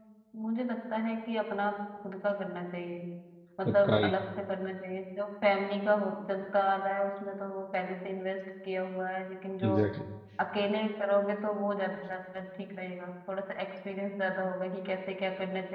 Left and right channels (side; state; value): both; identical; correlation 1.00